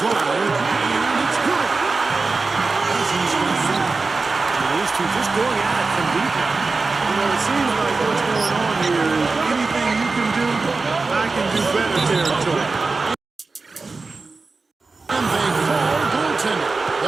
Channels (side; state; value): left; quieter; 3.9 dB